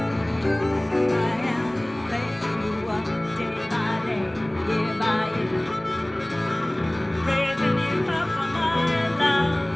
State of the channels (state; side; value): noise; right; hum, 27 dB below the sound